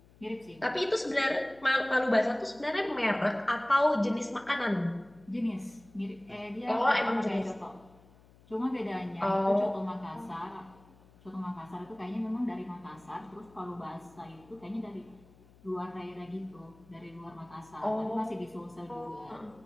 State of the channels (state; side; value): noise; left; hum, 26 dB below the sound